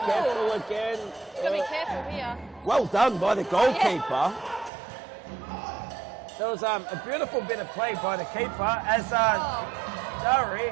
careful again. Gotta be careful here. Well done by the goalkeeper. There was a beautiful bit of play by the keeper as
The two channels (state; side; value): drops out; left; at 4.7 s